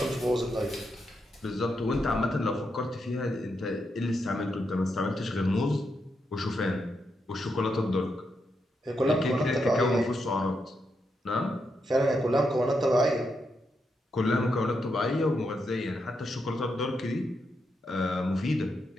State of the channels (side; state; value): both; normal; correlation 0.83